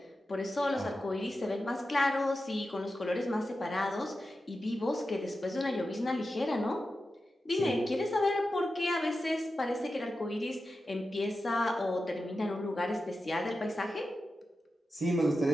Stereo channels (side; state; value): both; normal; correlation 0.91